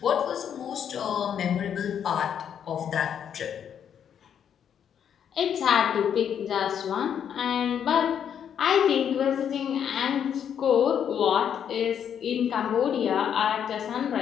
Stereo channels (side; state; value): right; quieter; 8.6 dB